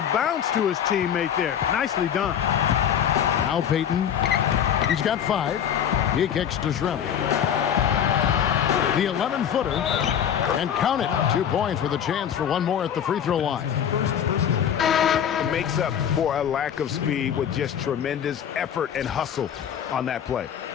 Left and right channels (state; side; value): quieter; right; 8.9 dB